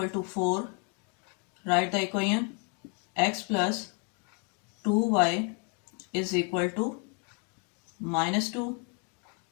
to 4. Write the equation x plus 2y is equal to minus 2.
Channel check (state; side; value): quieter; right; 36.8 dB